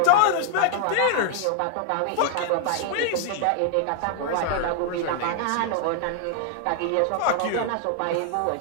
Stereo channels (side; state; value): both; different; correlation 0.00